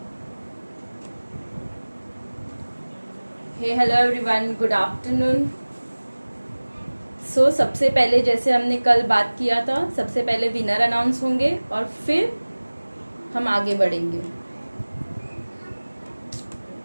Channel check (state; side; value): inverted; both; correlation -1.00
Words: हे हेलो एवरीवन, गुड आफ्टरनून. सो सबसे पहले जैसे हमने कल बात किया था, सबसे पहले विनर अनाउंस होंगे और फिर हम आगे बढ़ेंगे.